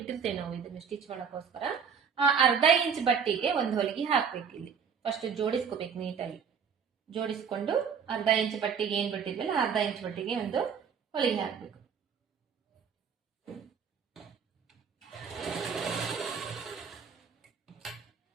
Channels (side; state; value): left; quieter; 6.7 dB